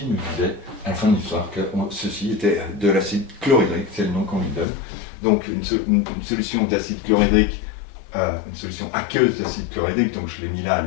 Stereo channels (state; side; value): drops out; right; at 4.7 s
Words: nous disait à la fin de l'histoire que ceci était de l'acide chlorhydrique, c'est le nom qu'on lui donne. Donc une solution d'acide chlorhydrique, une solution aqueuse d'acide chlorhydrique, donc je l'ai mis là à